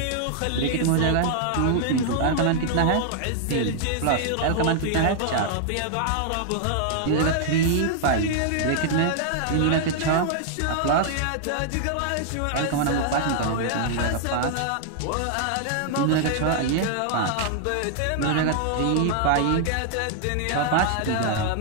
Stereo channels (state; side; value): different; both; correlation -0.01